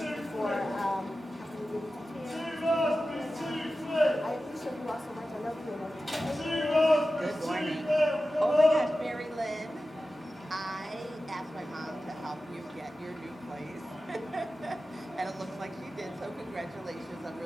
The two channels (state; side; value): normal; both; correlation 0.94